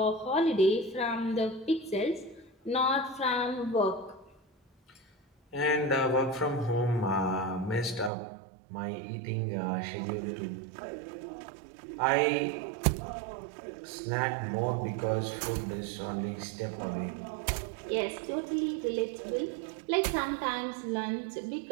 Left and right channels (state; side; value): drops out; left; at 8.1 s